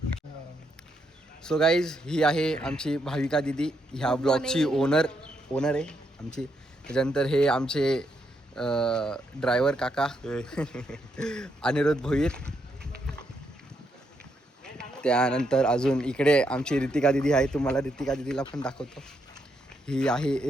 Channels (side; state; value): both; normal; correlation 0.78